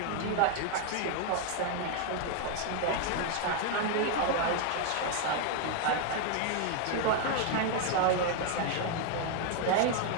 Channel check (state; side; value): different; both; correlation 0.00